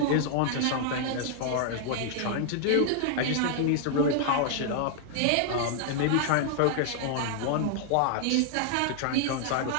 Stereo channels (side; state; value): both; different; correlation 0.00